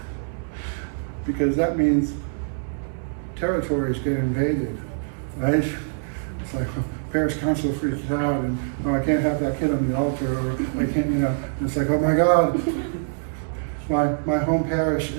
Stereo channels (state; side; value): silent; left; 62 dB below the other